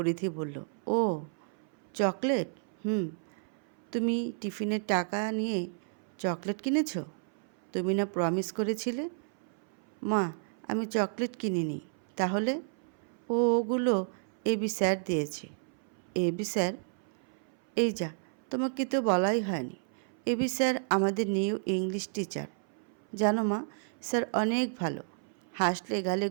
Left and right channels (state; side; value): silent; left; 57 dB below the other